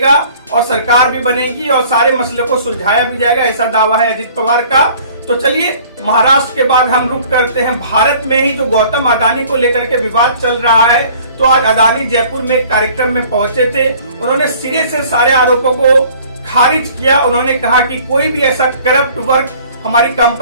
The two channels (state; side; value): inverted; both; correlation -0.53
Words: और सरकार भी बनेगी और सारे मसले को सुलझाया भी जाएगा, ऐसा दावा है अजित पवार का। तो चलिए महाराष्ट्र के बाद हम रुक करते हैं भारत में ही। तो गौतम अदानी को लेकर के विवाद चल रहा है। तो आज अदानी जयपुर में एक कार्यक्रम में पहुंचे थे। उन्होंने सिरे से सारे आरोपों को खारिज किया। उन्होंने कहा कि कोई भी ऐसा करप्ट वर्क हमारी